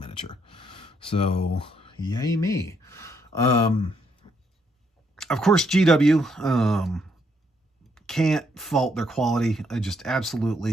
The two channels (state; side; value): normal; both; correlation 0.73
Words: So, yay me. Of course, GW, can't fault their quality. I just